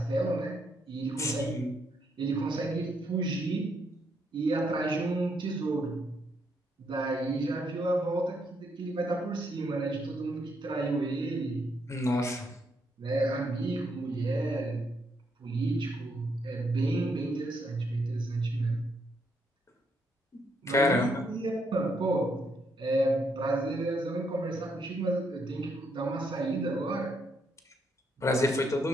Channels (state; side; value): normal; both; correlation 0.75